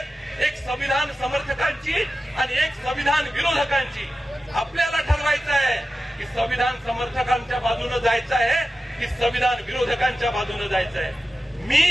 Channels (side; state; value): both; normal; correlation 0.93